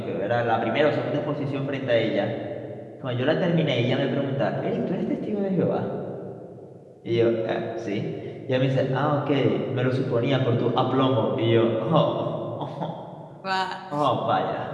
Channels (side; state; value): both; identical; correlation 1.00